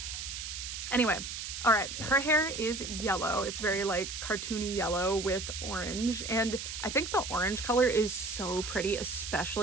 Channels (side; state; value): right; noise; hiss, 6 dB below the sound